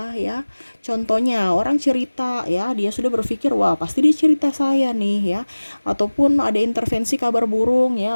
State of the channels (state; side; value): inverted; both; correlation -1.00